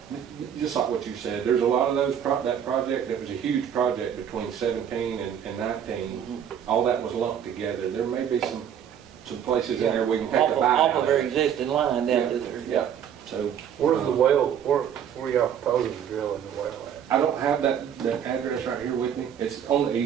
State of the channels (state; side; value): quieter; left; 8.9 dB